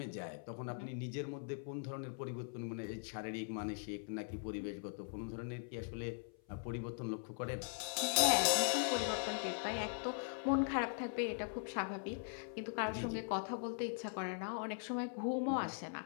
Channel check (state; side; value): silent; right; 50 dB below the other